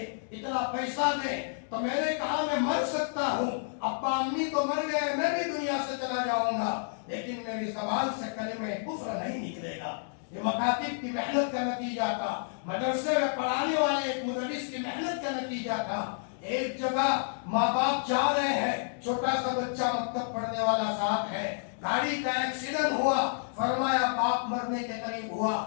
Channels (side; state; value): right; silent; 58 dB below the other